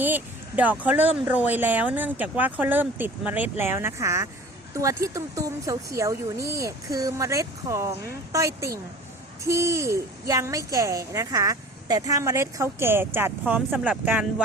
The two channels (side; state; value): both; normal; correlation 0.43